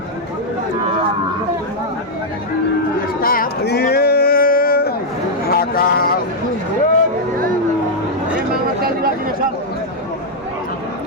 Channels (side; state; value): both; normal; correlation -0.03